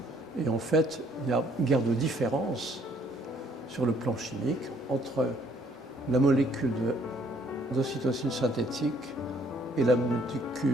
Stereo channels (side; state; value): both; normal; correlation 0.63